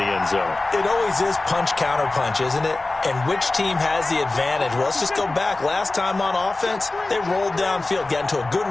end zone. It always is punch-counter-punch, isn't it? And which team has the advantage? Well, let's just go back. Last time on offense, they rolled downfield, got into a good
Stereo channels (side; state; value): right; quieter; 3.1 dB